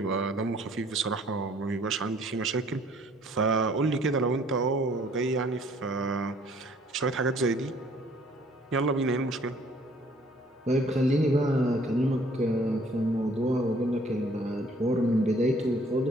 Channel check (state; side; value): normal; both; correlation 0.59